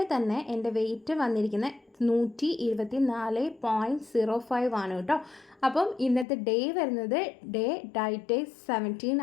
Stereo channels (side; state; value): right; drops out; at 6.2 s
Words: തന്നെ എൻ്റെ വെയിറ്റ് വന്നിരിക്കുന്നത് 124.05 ആണ് കേട്ടോ. അപ്പം ഇന്നത്തെ ഡേ വരുന്നത് ഡയറ്റ് 17